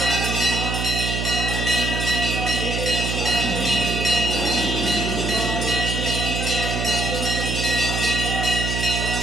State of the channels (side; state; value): right; noise; hum, 2 dB below the sound